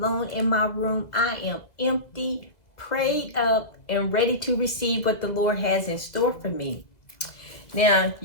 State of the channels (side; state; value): right; late; 2.0 ms